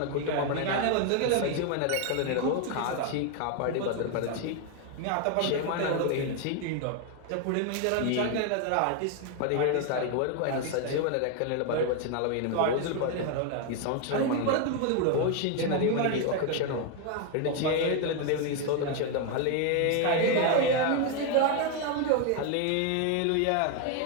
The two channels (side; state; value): both; different; correlation 0.01